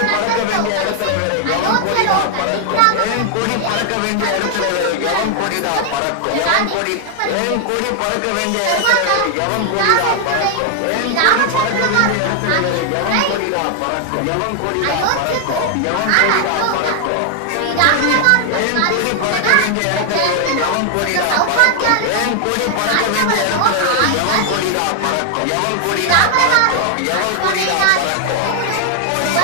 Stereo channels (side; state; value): both; different; correlation 0.00